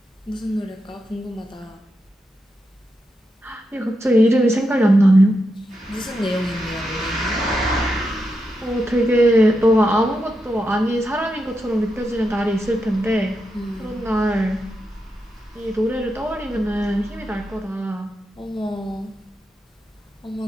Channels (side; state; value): both; normal; correlation 0.86